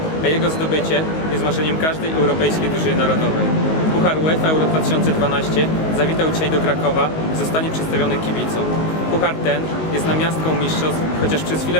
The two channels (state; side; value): late; right; 19 ms